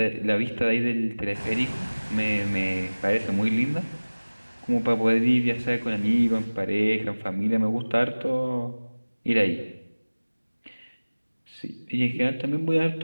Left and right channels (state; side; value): inverted; both; correlation -1.00